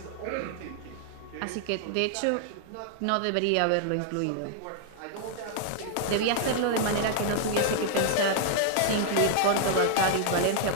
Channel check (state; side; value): different; both; correlation 0.00